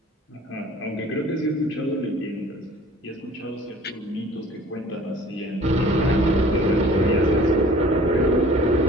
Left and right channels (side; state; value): both; normal; correlation 0.49